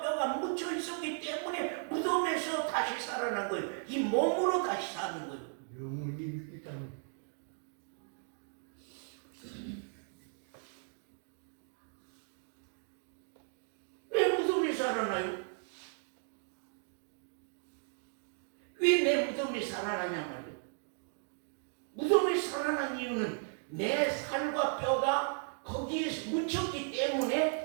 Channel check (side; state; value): left; silent; 54 dB below the other